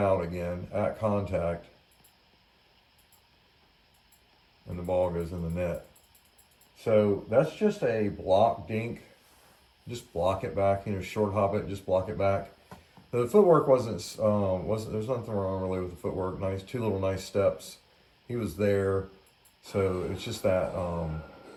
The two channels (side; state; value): both; identical; correlation 1.00